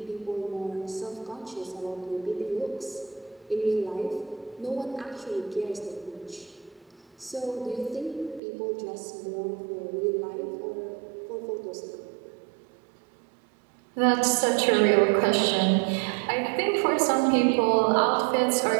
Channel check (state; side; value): drops out; left; at 8.4 s